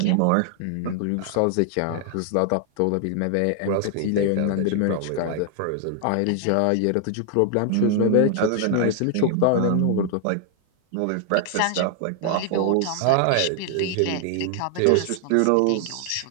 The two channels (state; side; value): different; both; correlation 0.00